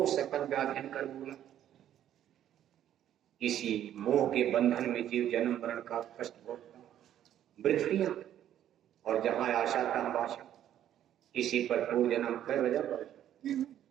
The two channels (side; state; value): left; quieter; 11.1 dB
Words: सकल व्याधीन कर बोला, इसी मोह के बंधन में जीव जन्म मरण का कष्ट भोगता, वृत्तियां और जहां आशा तहां आशा, इसी पर पूर्व जन्म कर बजा